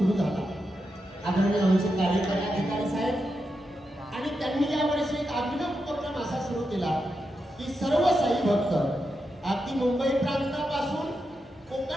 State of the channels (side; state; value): both; normal; correlation 0.87